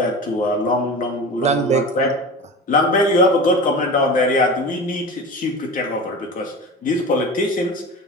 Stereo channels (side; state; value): both; normal; correlation 0.31